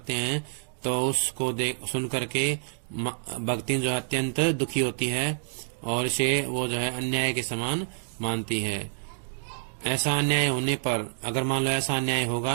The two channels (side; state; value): left; silent; digital silence